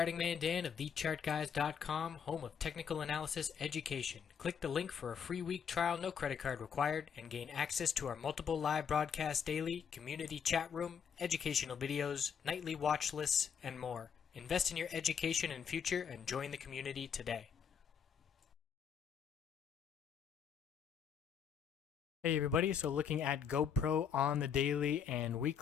Man Dan of TheChartGuys.com, home of technical analysis education. Click the link for a free week trial, no credit card required, and gain access to our multiple live broadcasts daily, community chat room, educational videos, nightly watch lists, and more. Invest in your education and future and join the community today. Hey everybody, so looking at GoPro on the daily and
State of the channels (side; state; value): right; quieter; 7.3 dB